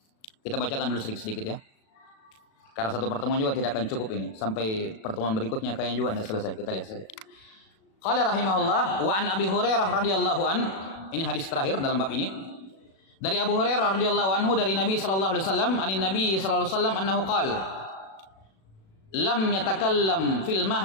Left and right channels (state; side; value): late; right; 37 ms